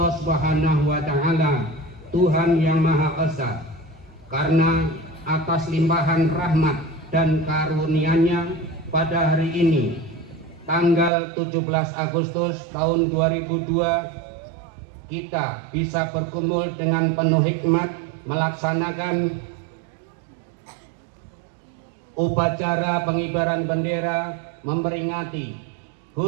Subhanahu wa taala, Tuhan yang Maha Esa, karena atas limpahan rahmat dan karunia-Nya pada hari ini tanggal 17 Agustus tahun 2002 kita bisa berkumpul dengan penuh hikmat melaksanakan upacara pengibaran bendera memperingati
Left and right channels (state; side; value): drops out; left; at 11.1 s